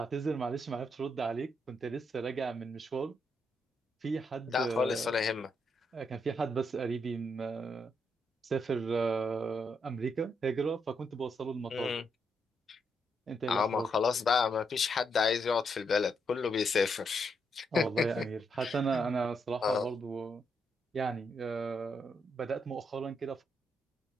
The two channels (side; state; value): both; normal; correlation 0.79